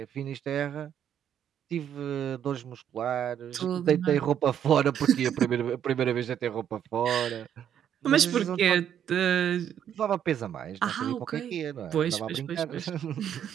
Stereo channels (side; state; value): left; quieter; 9.5 dB